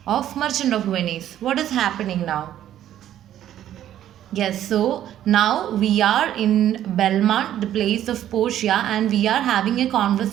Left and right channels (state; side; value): quieter; left; 11.6 dB